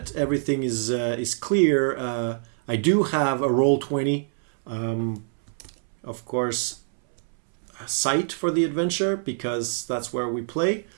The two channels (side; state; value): left; silent; 62 dB below the other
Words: everything is clear, I do have a Roll20, of course, site for the adventure, because that's where we play.